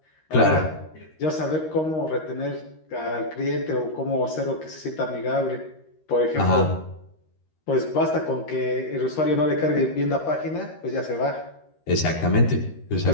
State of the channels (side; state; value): right; late; 13 ms